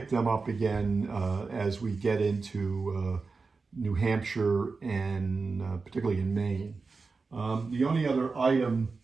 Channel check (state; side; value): quieter; left; 4.3 dB